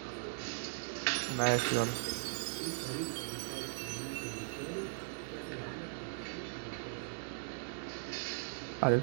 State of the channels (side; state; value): left; silent; digital silence